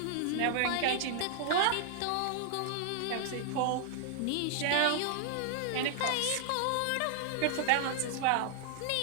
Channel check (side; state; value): both; different; correlation 0.00